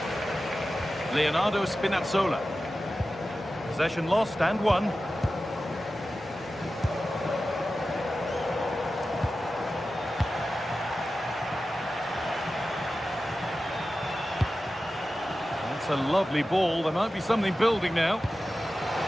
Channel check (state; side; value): normal; both; correlation 0.94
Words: Leonardo Spinazzola. Possession lost and won. That's a lovely ball. There might be something building now.